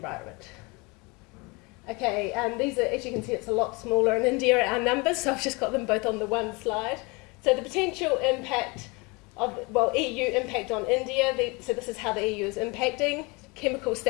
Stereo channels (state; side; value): quieter; right; 27.4 dB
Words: Okay, these are, as you can see, it's a lot smaller in India, our numbers, so I've just got them both on the one slide. So the potential impact of, EU impact on India, so this is how the EU is impacting, chemical